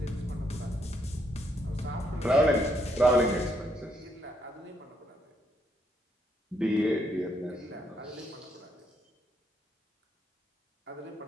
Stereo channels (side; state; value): both; normal; correlation 0.74